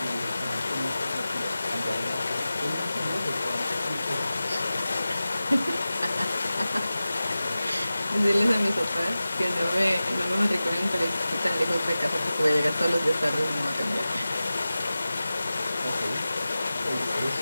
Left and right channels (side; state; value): both; inverted; correlation -0.95